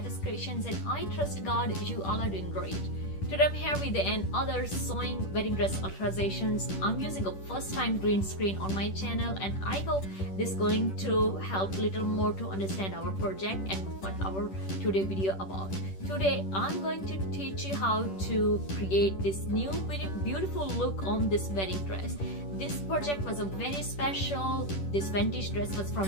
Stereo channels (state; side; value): late; right; 10 ms